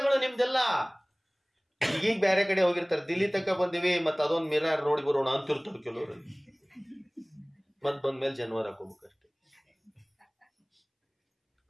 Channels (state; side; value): identical; both; correlation 1.00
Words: ನಿಮ್ದೆಲ್ಲ. ಈಗೀಗ ಬೇರೆ ಕಡೆ ಹೋಗಿರ್ತಾರೆ, ದಿಲ್ಲಿ ತನಕ ಬಂದಿವಿ, ಮತ್ ಅದೊಂದು ಮಿರರ್ ನೋಡಿ ಬರೋಣ ಅಂತಿರ್ತಾರೆ ಕೆಲವರು. ಮತ್ ಬಂದ್ಮೇಲೆ ಜನವರ ಹಾಕೋಬೇಕಷ್ಟೆ.